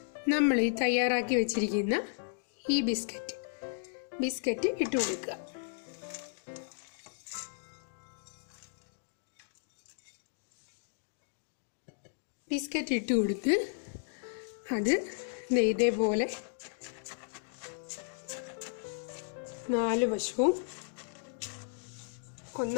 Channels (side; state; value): right; silent; digital silence